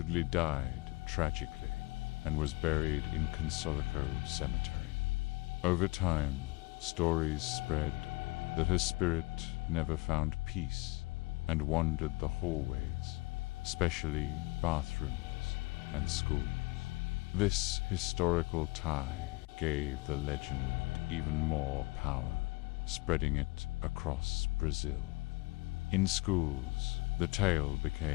died tragically and was buried in Consolico Cemetery. Over time, stories spread that her spirit never found peace and wandered the hallways, especially bathrooms and schools. This historical tie gave the legend even more power, spreading it across Brazil. In schools, the tale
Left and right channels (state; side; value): quieter; right; 23.8 dB